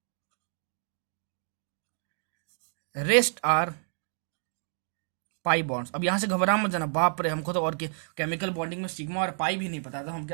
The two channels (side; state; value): left; silent; 58 dB below the other